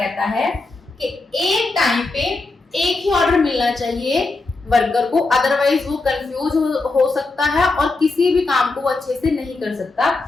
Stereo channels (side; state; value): right; quieter; 3.5 dB